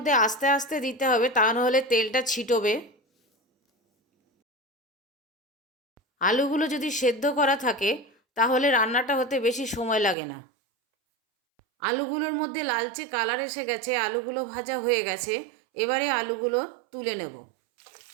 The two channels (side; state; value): left; drops out; at 10.2 s